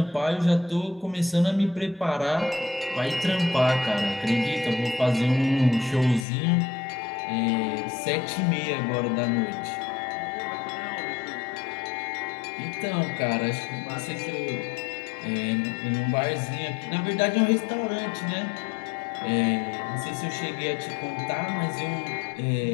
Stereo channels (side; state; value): right; drops out; at 6.2 s